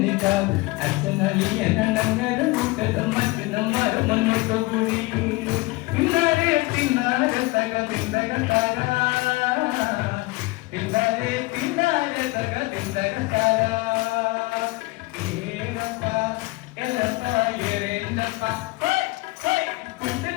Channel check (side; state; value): right; quieter; 22.6 dB